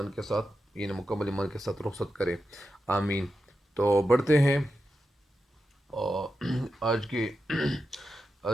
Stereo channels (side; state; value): both; normal; correlation 0.89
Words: یعنی مکمل ایمان کے ساتھ رخصت کرے، آمین۔ تو بڑھتے ہیں اور آج